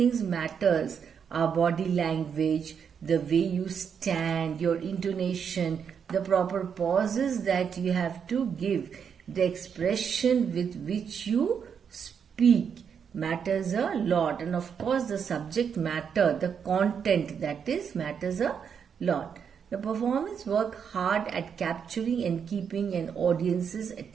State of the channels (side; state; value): left; quieter; 7.2 dB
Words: matters. Our body language, the way you stand, your intonation, the proper pauses that you have to give, the expression with which you speak matters a lot. And of course, the subject matter, the content that is matters a lot. The performance work hard at capturing and keeping an audience's